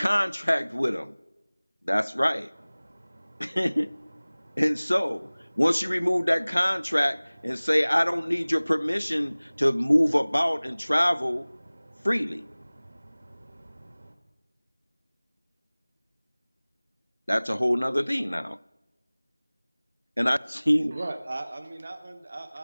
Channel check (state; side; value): inverted; both; correlation -1.00